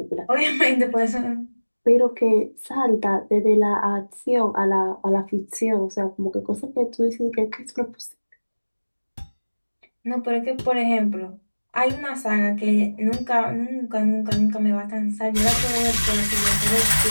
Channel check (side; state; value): both; inverted; correlation -1.00